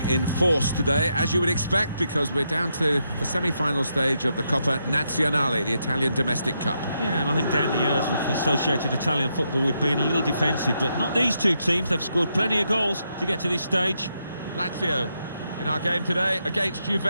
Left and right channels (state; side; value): inverted; both; correlation -0.81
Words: in force today, as you would expect, because we're down to the semi-final stage of the Coppa Nazionale, the Italian domestic cup. Yeah, and I think down the years we've associated Italian football with being a little defensive, but not these two teams. They've scored plenty of goals to get to this stage. Lazio in our game today against